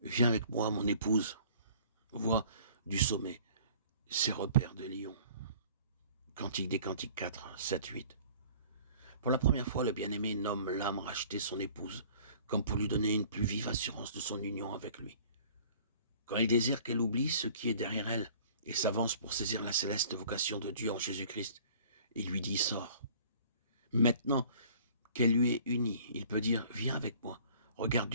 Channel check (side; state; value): both; inverted; correlation -0.50